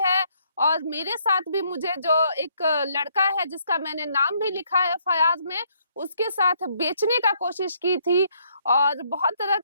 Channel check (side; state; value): both; inverted; correlation -0.69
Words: और मेरे साथ भी मुझे जो एक लड़का है जिसका मैंने नाम भी लिखा है एफआईआर में, उसके साथ बेचने का कोशिश की थी। और बहुत तरह